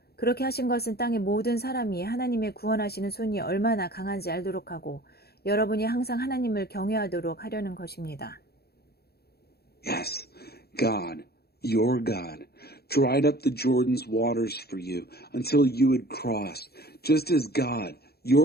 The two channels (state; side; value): late; right; 0.46 ms